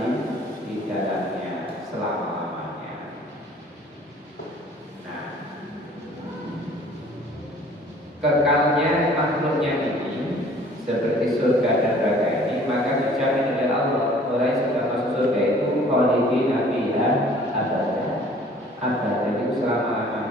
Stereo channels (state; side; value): normal; both; correlation 0.53